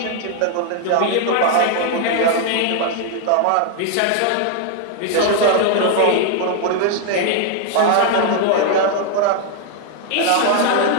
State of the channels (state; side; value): different; both; correlation 0.00